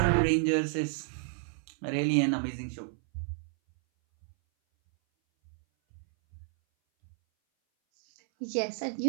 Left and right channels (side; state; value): left; silent; 57 dB below the other